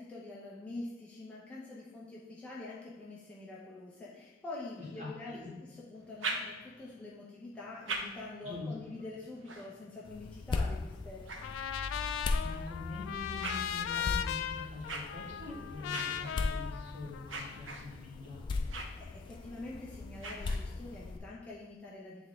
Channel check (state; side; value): quieter; right; 3.4 dB